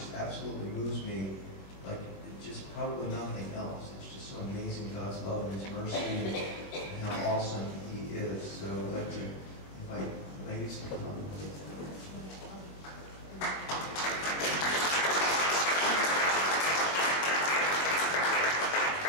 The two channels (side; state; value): right; late; 22 ms